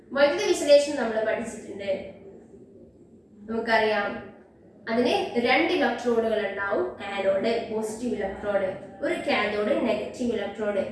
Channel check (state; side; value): identical; both; correlation 1.00